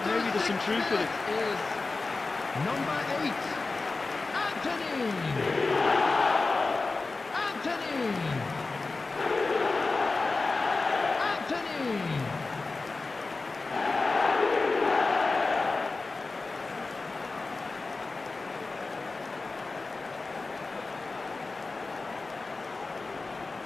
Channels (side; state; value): right; quieter; 3.7 dB